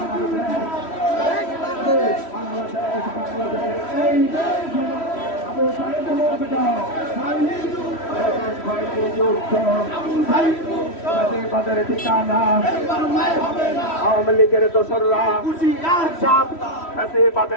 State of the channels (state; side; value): late; right; 3.1 ms